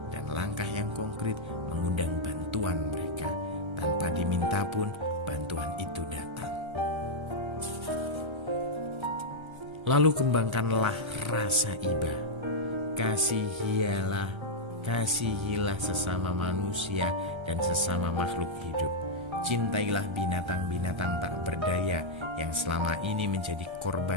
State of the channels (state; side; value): late; left; 1.3 ms